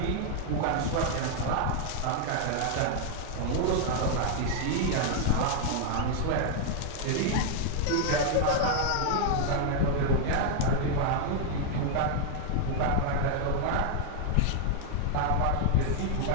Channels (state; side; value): different; both; correlation 0.00